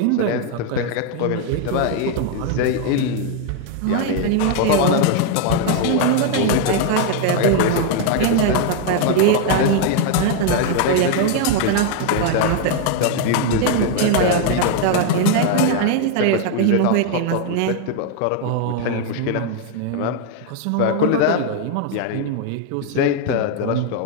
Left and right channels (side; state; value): both; different; correlation 0.00